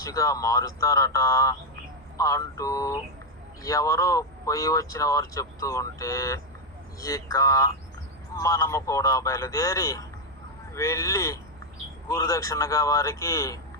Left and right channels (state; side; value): normal; both; correlation 0.04